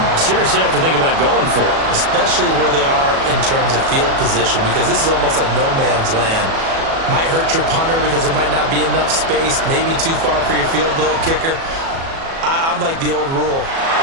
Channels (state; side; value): late; left; 37 ms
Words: seriously have to think about going for it. Especially where they are in terms of field position, because this is almost like no man's land. Might hurt your punter because there might not be enough space, maybe too far for your field goal kicker. I'm like the old rule.